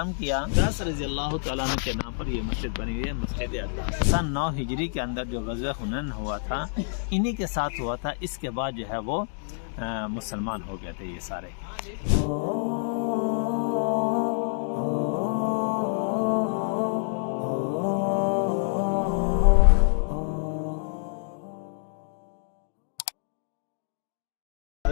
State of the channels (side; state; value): right; silent; digital silence